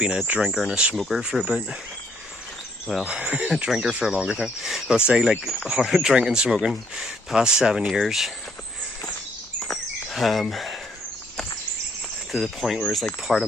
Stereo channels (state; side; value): normal; both; correlation 0.68